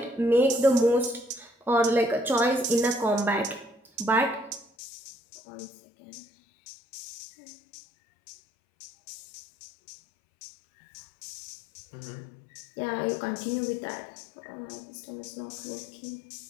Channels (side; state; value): right; drops out; at 4.7 s